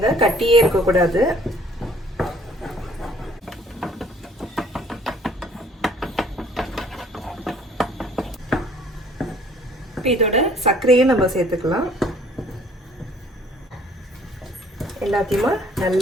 கட்டியே இருக்கக்கூடாது. இதோட சர்க்கரையும் நம்ம சேர்த்துக்கலாம். எல்லாத்தையுமே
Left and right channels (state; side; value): normal; both; correlation 0.57